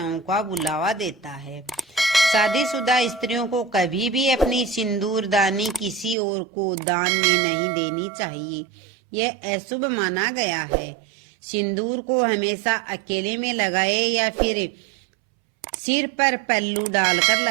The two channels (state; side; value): drops out; left; at 6.2 s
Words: का बुलावा देता है। शादीशुदा स्त्रियों को कभी भी अपनी सिंदूरदानी किसी और को दान में नहीं देनी चाहिए। यह अशुभ माना गया है। सिंदूर को हमेशा अकेले में लगाएं या फिर सिर पर पल्लू डालकर